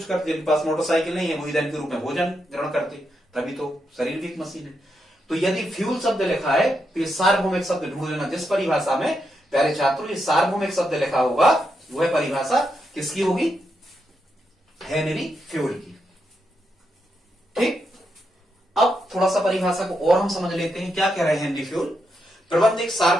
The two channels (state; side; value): normal; both; correlation 0.83